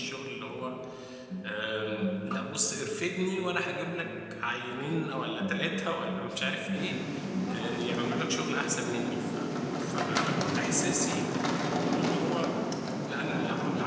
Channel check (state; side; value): identical; both; correlation 1.00